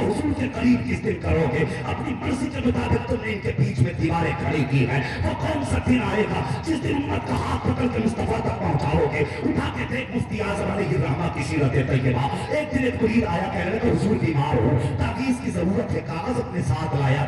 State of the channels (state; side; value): identical; both; correlation 1.00